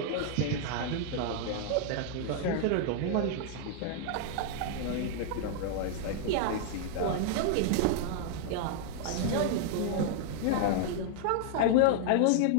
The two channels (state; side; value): different; both; correlation 0.00